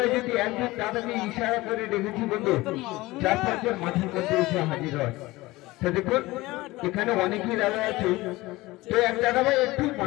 যদি একজন দাদাকে ইশারা করে রেখেছি বন্ধু, 4-5 মাঠের মধ্যে এসে হাজির হয়। তো দেখুন এখানে অনেকেই দাদা আছে, তো এক দাদা ভাই একটু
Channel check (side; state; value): right; quieter; 19.8 dB